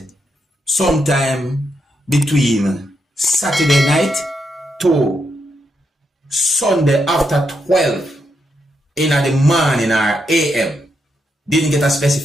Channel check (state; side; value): normal; both; correlation 0.82